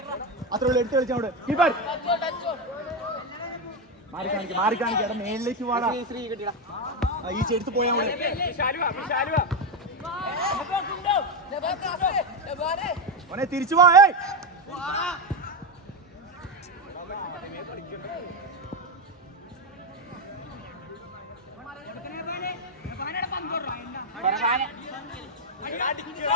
അത്ര എടുത്ത് കളിച്ചോട് മാറി കാണിക്കാം എടാ മേളിലേക്ക് വാടാ ഈ ചെടുത്ത് പോയാ മോനെ തിരിച്ചു വാ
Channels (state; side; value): normal; both; correlation 0.09